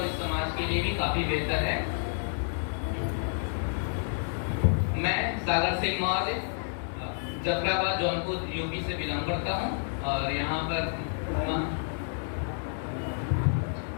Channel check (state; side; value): silent; right; digital silence